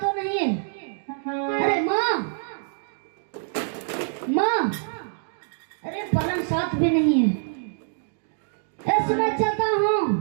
नहीं है। अरे माँ, माँ, अरे पलंग साथ भी नहीं है। ऐसे मैं चलता हूँ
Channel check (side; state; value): left; silent; digital silence